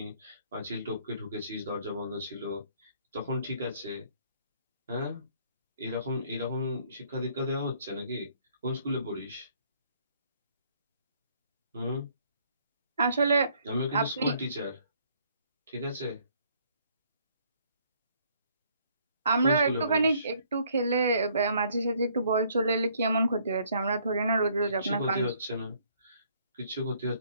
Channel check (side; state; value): both; inverted; correlation -0.64